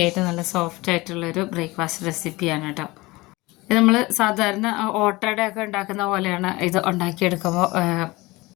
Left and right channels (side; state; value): right; quieter; 21.6 dB